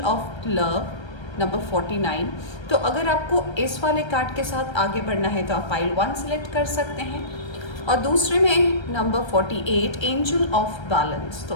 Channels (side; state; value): right; late; 1.3 ms